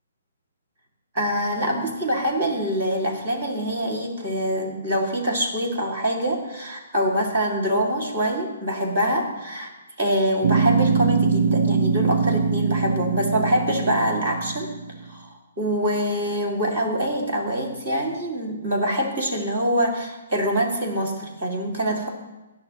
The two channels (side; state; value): both; inverted; correlation -0.57